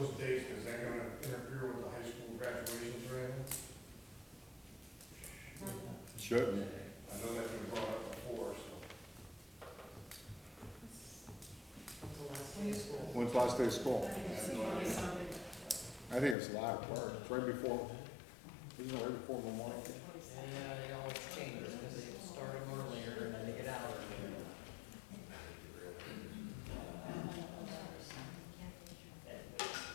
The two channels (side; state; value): right; drops out; at 16.4 s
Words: dates, is that gonna interfere with the high school graduations or anything? Should. I know that's been brought up before, so. when you school. When's last day of school? I think it's 20 something. I think it's a lot of work. It's right before, isn't it right before Memorial Day? Yeah, it always changes, because they start them earlier and then they get out earlier.